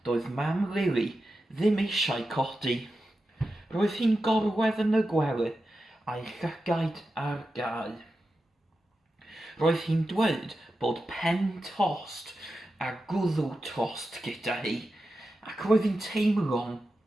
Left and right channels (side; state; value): both; normal; correlation 0.91